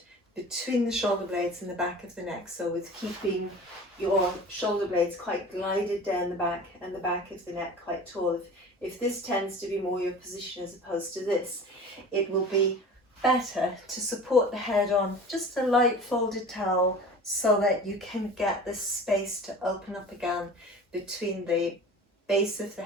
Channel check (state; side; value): normal; both; correlation 0.39